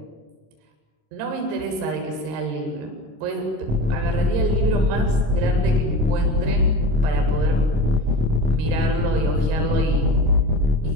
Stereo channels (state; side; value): late; left; 27 ms